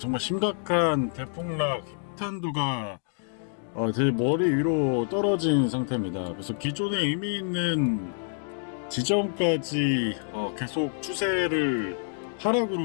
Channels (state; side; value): silent; right; digital silence